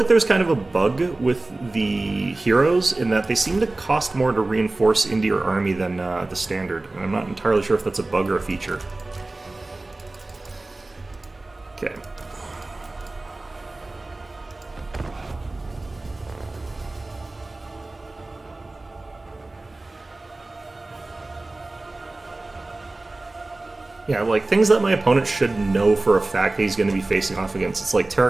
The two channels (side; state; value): left; quieter; 3.0 dB